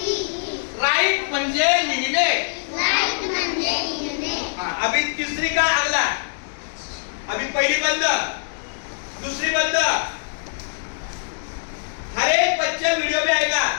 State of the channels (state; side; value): silent; right; digital silence